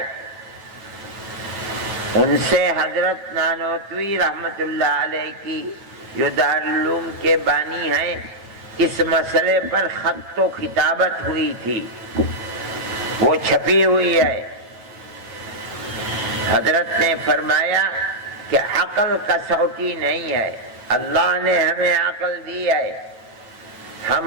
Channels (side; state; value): left; late; 9.1 ms